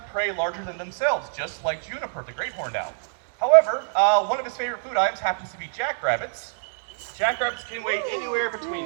prey larger than themselves, just like Juniper, the great horned owl. However, one of his favorite food items happens to be jackrabbits. Jackrabbits can weigh anywhere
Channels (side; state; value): left; silent; digital silence